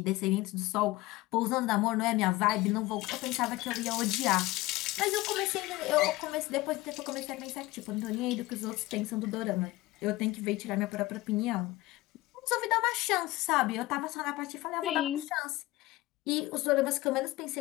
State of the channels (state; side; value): quieter; right; 19.0 dB